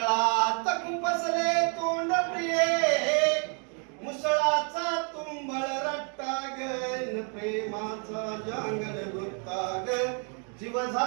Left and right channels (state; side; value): quieter; left; 39.3 dB